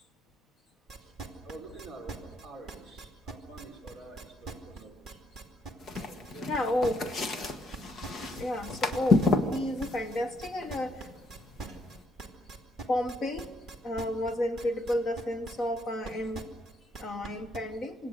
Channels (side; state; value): both; normal; correlation 0.73